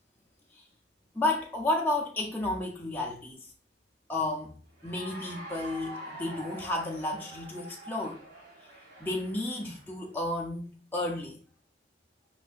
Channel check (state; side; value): normal; both; correlation 0.40